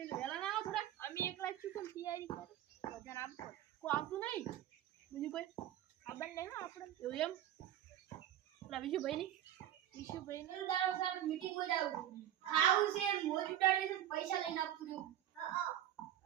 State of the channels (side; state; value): left; quieter; 11.8 dB